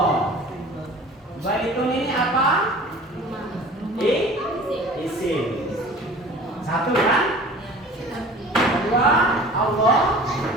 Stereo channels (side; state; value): both; normal; correlation 0.43